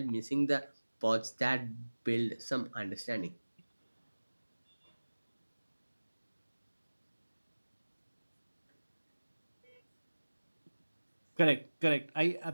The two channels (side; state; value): both; inverted; correlation -1.00